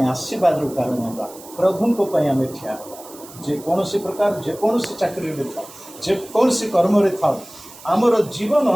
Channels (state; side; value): noise; right; hiss, 19 dB below the sound